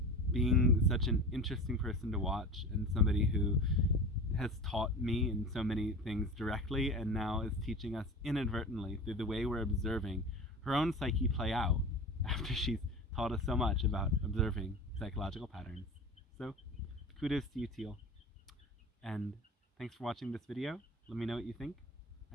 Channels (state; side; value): normal; both; correlation 0.32